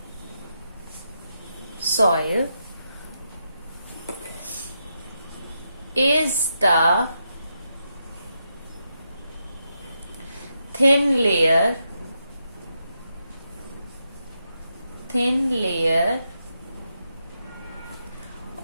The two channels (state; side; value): inverted; both; correlation -0.83